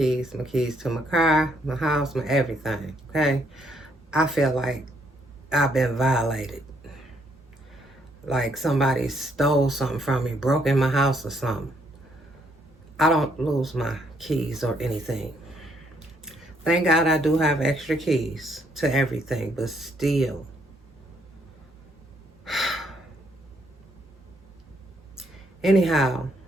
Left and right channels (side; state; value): both; normal; correlation 0.71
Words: to my car, my house, my everything. Okay, I feel like I've been violated, like somebody stole something from me, broke in my house or something. I don't lose my keys or anything. Thank God I do have extra keys to everything, but still. Anyhow,